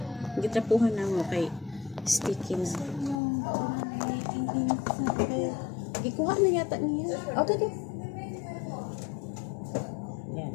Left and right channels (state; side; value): drops out; right; at 3.2 s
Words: Gitrapuhan na mo kay sticky na. Gikuha na yata niya. Okay. Yan.